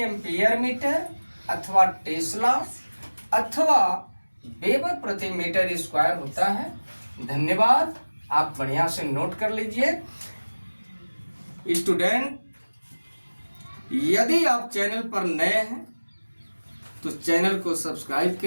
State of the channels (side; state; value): both; inverted; correlation -1.00